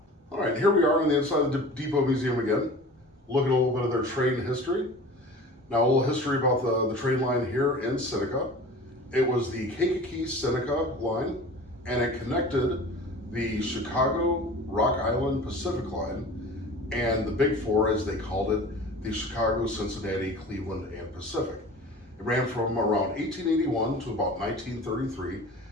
All right, here we are on the inside of the Depot Museum again, looking at a little bit of their train history. Now, a little history about the train line here in Seneca. It was the Kankakee-Seneca line, and it connected the Chicago, Rock Island, Pacific line, and the Big Four, as they called it, the Chicago, Cincinnati, Cleveland, and Pacific. It ran from around 1881 to about 1933,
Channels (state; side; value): normal; both; correlation 0.40